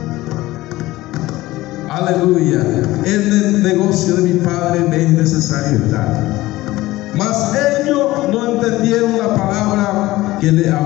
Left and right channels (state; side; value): quieter; right; 17.8 dB